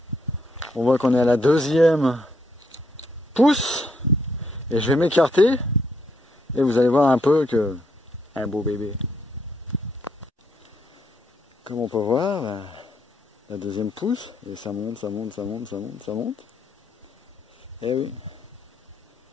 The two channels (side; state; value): both; normal; correlation 0.74